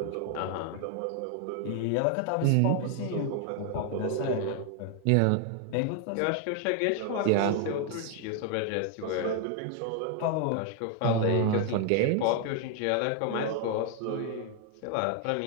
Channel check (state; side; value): different; both; correlation 0.00